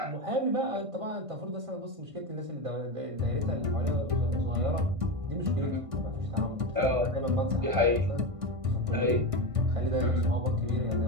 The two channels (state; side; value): late; left; 1.5 ms